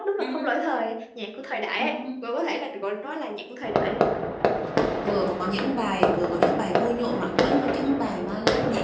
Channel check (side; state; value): both; identical; correlation 1.00